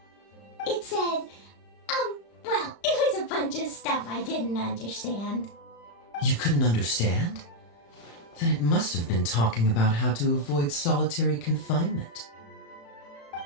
It said, well, it was a bunch of stuff I didn't understand. You couldn't understand? Then it must have been talking about how to avoid solitary confinement.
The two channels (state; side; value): late; right; 35 ms